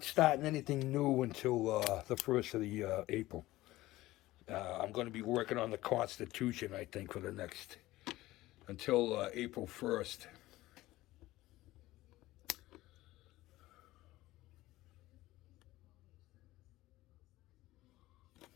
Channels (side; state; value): right; quieter; 17.3 dB